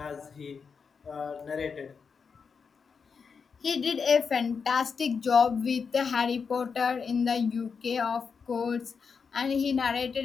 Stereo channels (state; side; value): quieter; right; 5.7 dB